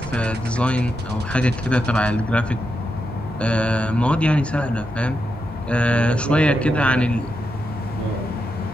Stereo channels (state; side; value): normal; both; correlation 0.85